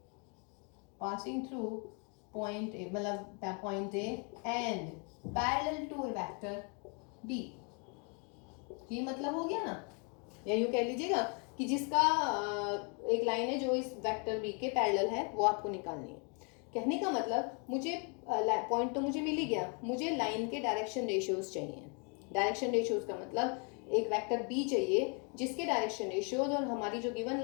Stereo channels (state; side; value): quieter; right; 36.3 dB